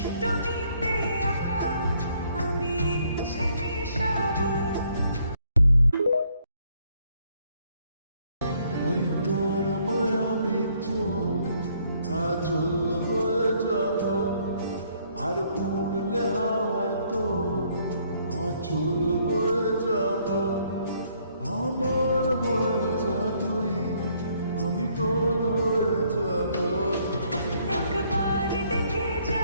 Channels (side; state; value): both; inverted; correlation -0.67